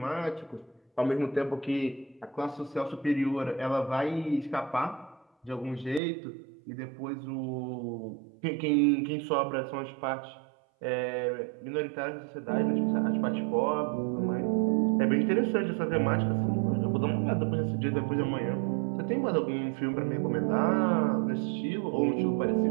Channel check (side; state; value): left; drops out; at 6.0 s